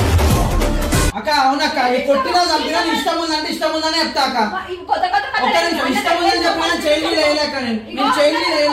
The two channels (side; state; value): both; identical; correlation 1.00